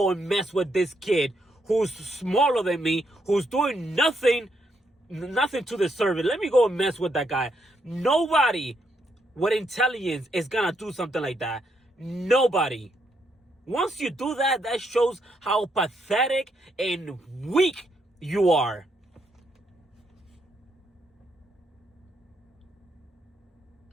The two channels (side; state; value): both; normal; correlation 0.77